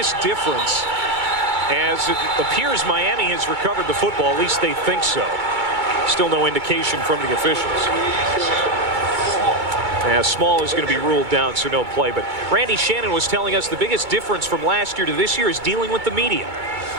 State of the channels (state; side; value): late; left; 2.2 ms